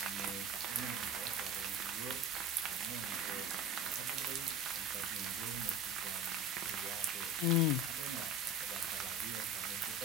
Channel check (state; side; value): normal; both; correlation 0.32